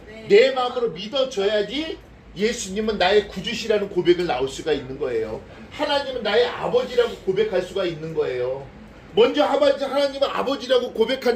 내 마음으로 믿어줘야지 예수님은 나의 구주시라는 고백을 나올 수가 있는 거예요. 하나님은 나의 아버지라고 고백할 수가 있는 거예요. 먼저 하나님은 아버지라고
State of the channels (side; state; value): both; identical; correlation 1.00